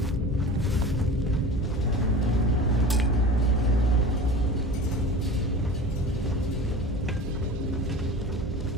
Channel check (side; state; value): both; normal; correlation 0.36